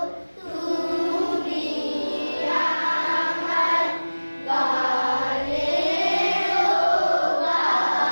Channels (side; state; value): both; inverted; correlation -1.00